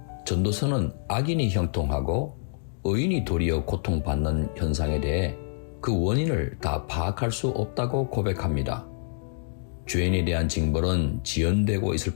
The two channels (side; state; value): right; silent; digital silence